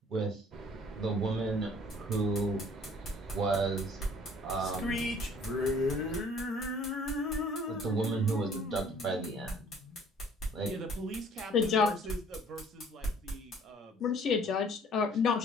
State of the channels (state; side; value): normal; both; correlation 0.55